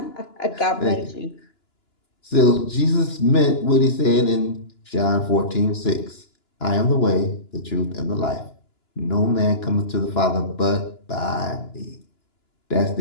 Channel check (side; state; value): right; late; 2.9 ms